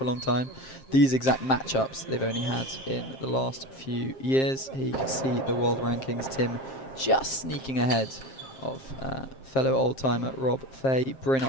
a long time. These exact matchups they've only had in the last few years. Here you can see the world rankings. Tim just sneaking ahead of fellow old-timer Rob Fahey. Bryn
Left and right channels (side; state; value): right; late; 7.5 ms